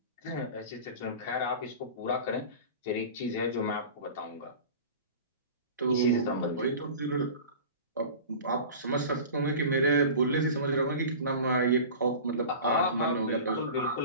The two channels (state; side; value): inverted; both; correlation -0.36